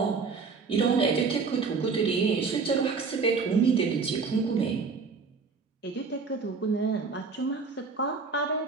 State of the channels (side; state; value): left; quieter; 4.8 dB